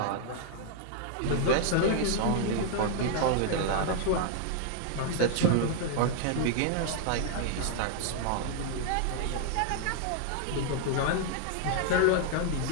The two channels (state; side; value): different; both; correlation -0.01